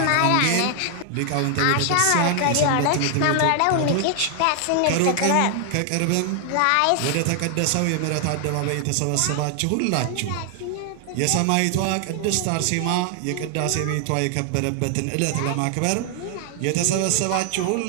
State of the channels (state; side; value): different; both; correlation 0.00